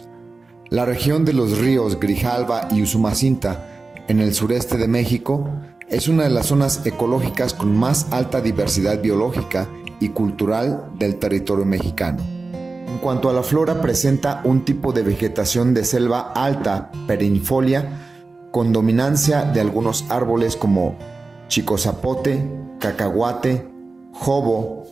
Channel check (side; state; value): left; quieter; 3.7 dB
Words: La región de los ríos Grijalva y Usumacinta, en el sureste de México, es una de las zonas ecológicas con más alta diversidad biológica y cultural del territorio mexicano. En cuanto a la flora, presenta un tipo de vegetación de selva alta, perennifolia, con dominancia de algunos árboles como chicozapote, cacahuate, jobo